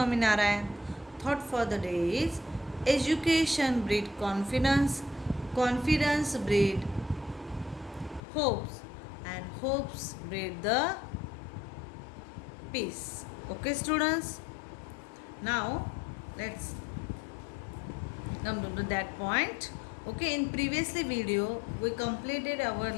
Thought for the day is education breed confidence, confidence breed hopes, and hopes breed the peace. Okay, students. Now let's come to that point. Okay, in previously video we completed our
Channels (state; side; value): drops out; right; at 8.2 s